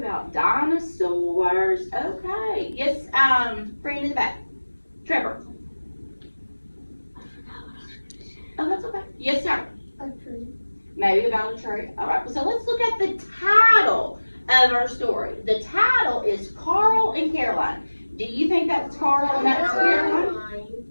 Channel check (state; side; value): inverted; both; correlation -1.00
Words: dinosaurs. Okay. Yes, friend in the back. Trevor. Oh, that's okay. Yes, sir. A tree. Maybe about a tree. All right, so let's look at the title of our story. The title is Carl and Caroline. Do you think that's Carl and that's Caroline?